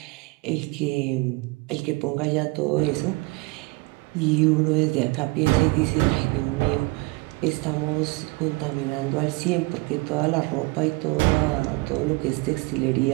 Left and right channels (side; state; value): left; quieter; 25.2 dB